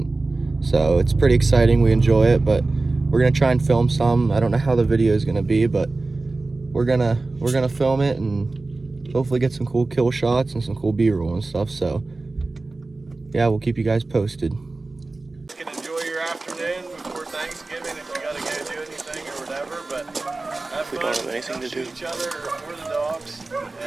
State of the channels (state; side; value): quieter; left; 3.3 dB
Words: so it's pretty exciting. We enjoy it, but we're going to try and film some. I don't know how the video is going to be, but we're gonna film it and hopefully get some cool kill shots and some cool B-roll and stuff. So yeah, we'll keep you guys posted. You can enjoy your afternoon before Thanksgiving if you gotta go do anything or whatever, but have fun. We don't have anything to do. Each other or the dogs